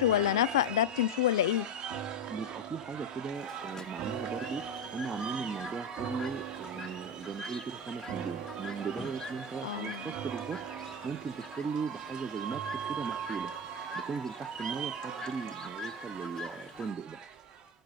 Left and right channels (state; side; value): normal; both; correlation 0.16